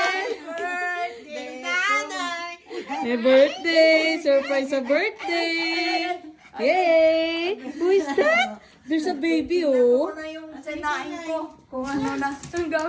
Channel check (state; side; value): identical; both; correlation 1.00